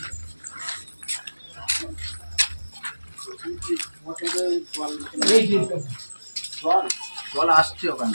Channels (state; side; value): inverted; both; correlation -1.00